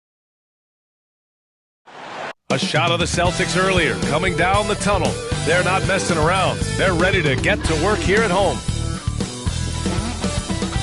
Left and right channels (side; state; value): both; identical; correlation 1.00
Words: A shot of the Celtics earlier, coming down the tunnel. They're not messing around. They're ready to get to work here at home.